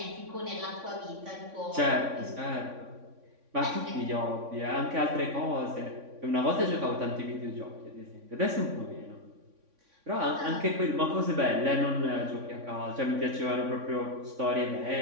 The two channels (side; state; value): left; late; 3.6 ms